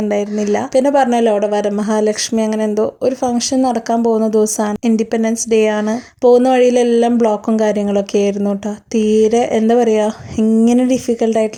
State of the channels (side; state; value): both; identical; correlation 1.00